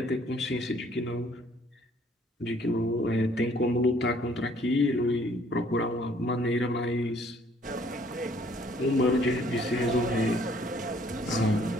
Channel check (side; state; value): both; normal; correlation 0.61